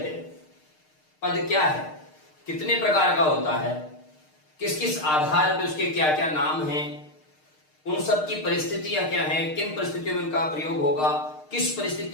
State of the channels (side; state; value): right; late; 6.5 ms